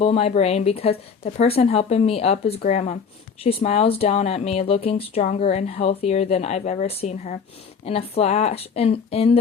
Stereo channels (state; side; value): quieter; right; 6.1 dB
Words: my brain because the person helping me up is Grandma. She smiles down at me, looking stronger and healthier than I've ever seen her. In the